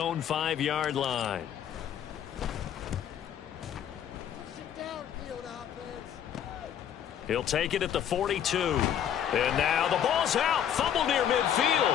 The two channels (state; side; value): quieter; right; 9.5 dB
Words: 5-yard line. He'll take it at the 42. And now the ball's out. Fumble near